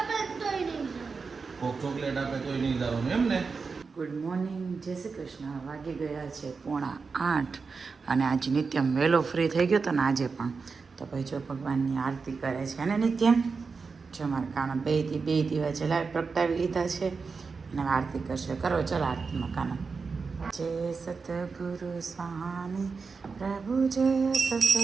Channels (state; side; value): quieter; left; 4.8 dB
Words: તોય નહીં કોક ચોકલેટ આપે તોય નહીં જવાનું એમ ને. ગુડ મોર્નિંગ, જય શ્રી કૃષ્ણ. વાગી ગયા છે 7:45 અને આજે નિત્યમ વહેલો ફ્રી થઈ ગયો હતો ને આજે પણ. તો ભાઈ જો ભગવાનની આરતી કરે છે ને નિત્યમ. જો મારા કાના બે દીવા જલાવી પ્રગટાવી લીધા છે અને આરતી કરશે. કરો ચાલો આરતીમાં કાના. જય સતગુરુ સ્વામી પ્રભુ, જય